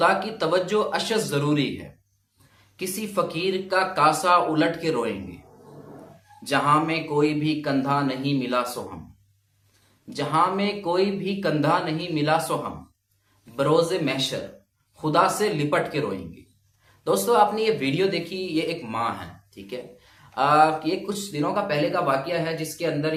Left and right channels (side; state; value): both; identical; correlation 1.00